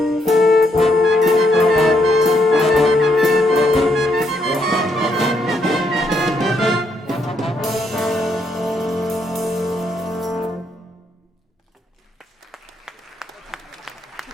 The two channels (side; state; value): both; normal; correlation 0.75